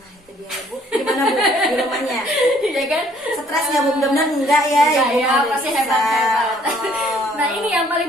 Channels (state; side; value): normal; both; correlation 0.61